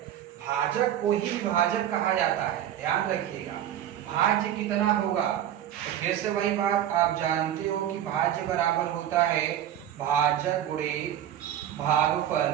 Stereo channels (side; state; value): left; quieter; 11.0 dB